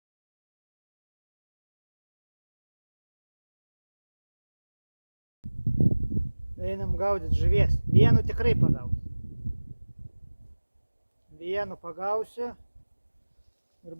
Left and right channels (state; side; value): inverted; both; correlation -1.00